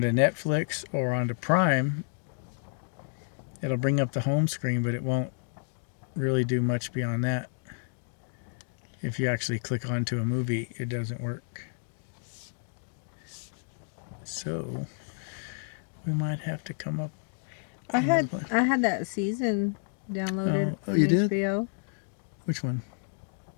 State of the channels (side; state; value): right; silent; 58 dB below the other